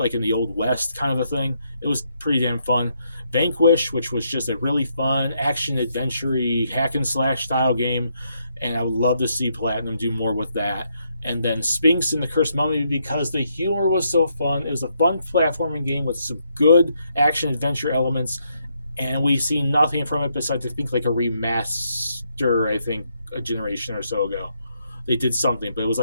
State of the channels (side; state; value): both; inverted; correlation -0.76